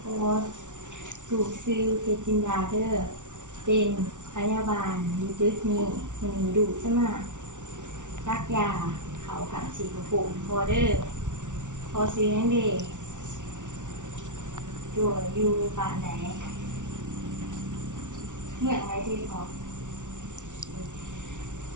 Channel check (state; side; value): late; left; 0.86 ms